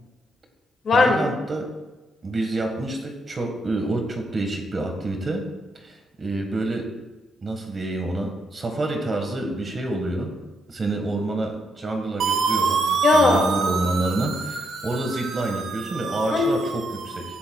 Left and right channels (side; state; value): both; normal; correlation 0.78